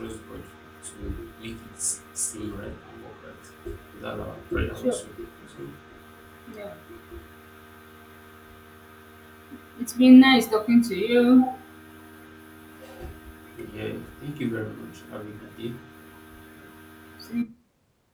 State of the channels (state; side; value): identical; both; correlation 1.00